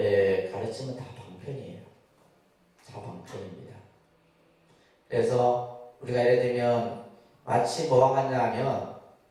가르침은 다 방편이에요. 다 방편입니다. 그래서 우리가 예를 들면 마치 뭐가 같냐 하면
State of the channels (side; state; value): both; identical; correlation 1.00